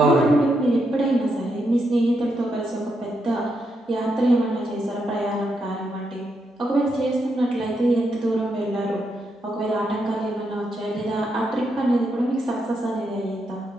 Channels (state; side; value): normal; both; correlation 0.81